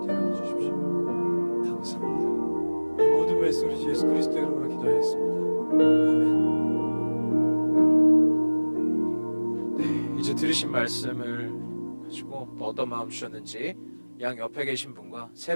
데려가 주십시오. 감사합니다. 이 모든 말씀 우리 예수 그리스도의 이름으로 기도하였습니다. 아멘. 네, 이제 들으신 말씀을 가지고 어떤 마음 주셨는지 양 옆에 계신 분과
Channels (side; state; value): both; inverted; correlation -1.00